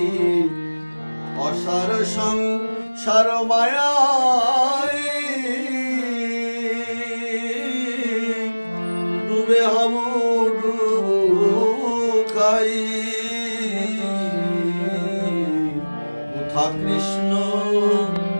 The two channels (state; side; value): inverted; both; correlation -1.00